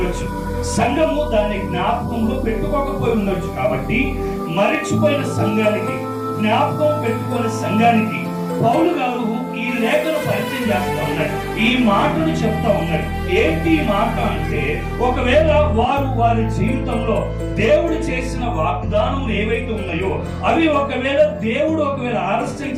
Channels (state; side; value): identical; both; correlation 1.00